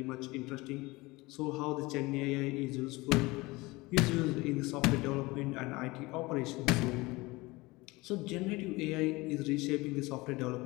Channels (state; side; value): quieter; right; 22.3 dB